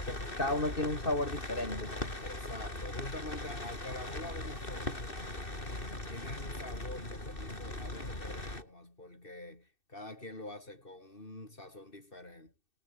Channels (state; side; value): late; right; 2.6 ms